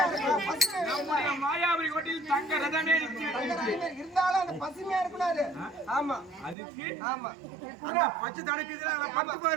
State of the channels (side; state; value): left; drops out; at 6.6 s